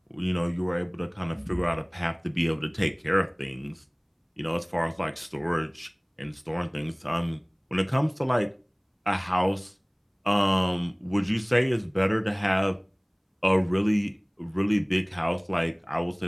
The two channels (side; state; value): both; identical; correlation 1.00